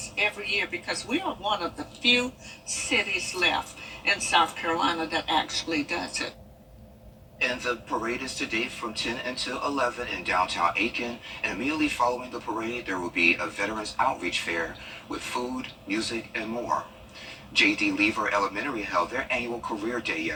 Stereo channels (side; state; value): both; identical; correlation 1.00